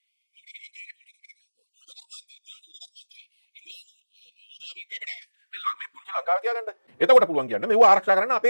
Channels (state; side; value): inverted; both; correlation -1.00